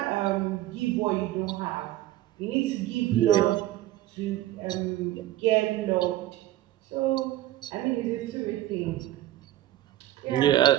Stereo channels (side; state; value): left; quieter; 14.6 dB